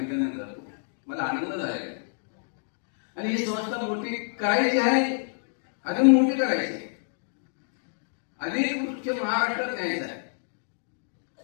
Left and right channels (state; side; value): silent; right; digital silence